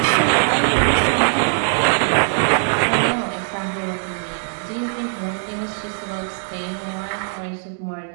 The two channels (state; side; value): silent; left; digital silence